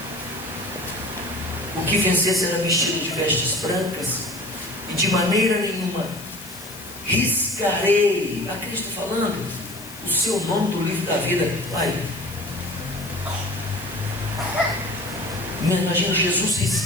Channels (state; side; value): noise; left; hiss, 15 dB below the sound